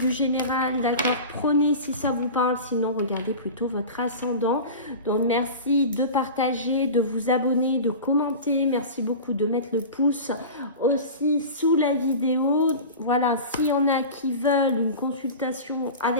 général, d'accord? Prenez si ça vous parle, sinon regardez plutôt votre ascendant. Donc merci de partager, de vous abonner, de commenter. Merci beaucoup de mettre le pouce aussi sous la vidéo. Voilà, s'il y en a qui veulent une consultation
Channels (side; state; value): both; inverted; correlation -0.32